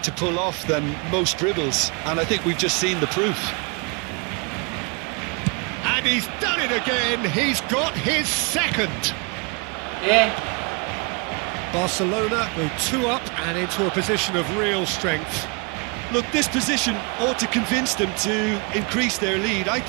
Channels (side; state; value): left; quieter; 32.5 dB